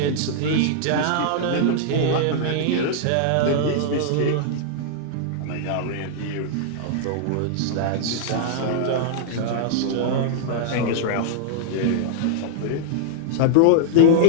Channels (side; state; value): both; different; correlation -0.01